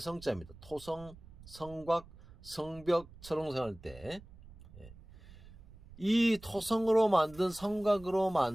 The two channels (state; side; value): noise; right; rumble, 20 dB below the sound